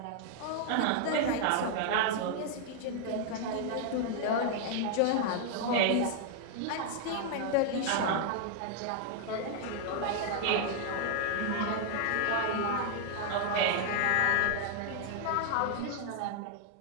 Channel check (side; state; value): both; different; correlation 0.00